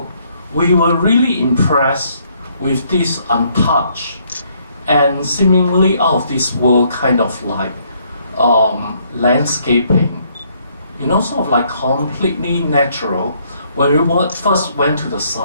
we were really impressed with this untouched and seemingly out of this world kind of like landscaping, you know, sort of like completely natural when we first went to the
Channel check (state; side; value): inverted; both; correlation -0.69